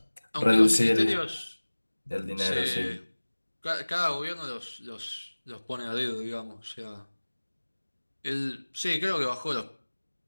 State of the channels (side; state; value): both; inverted; correlation -1.00